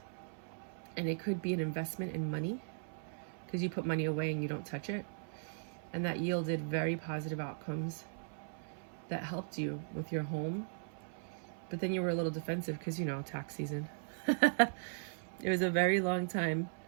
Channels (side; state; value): left; silent; 52 dB below the other